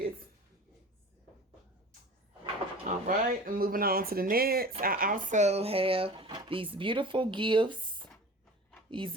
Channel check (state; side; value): normal; both; correlation 0.39